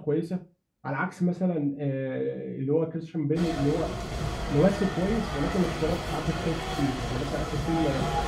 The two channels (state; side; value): identical; both; correlation 1.00